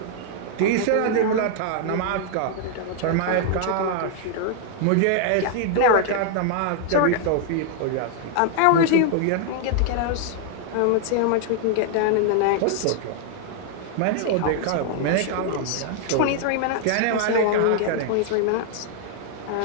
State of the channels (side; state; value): both; different; correlation 0.00